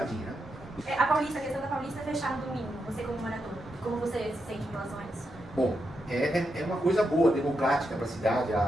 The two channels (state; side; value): normal; both; correlation 0.84